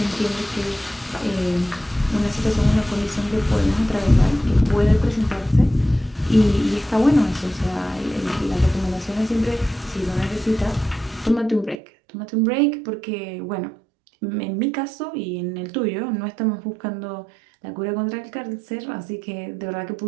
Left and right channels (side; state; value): left; drops out; at 11.8 s